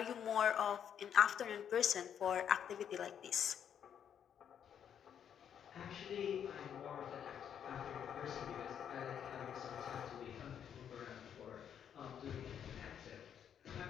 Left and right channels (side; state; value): right; quieter; 8.7 dB